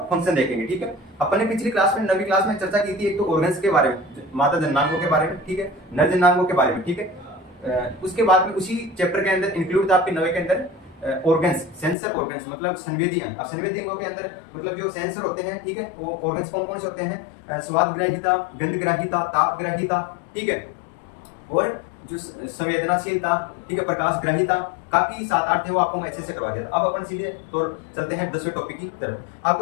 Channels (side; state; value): right; drops out; at 12.0 s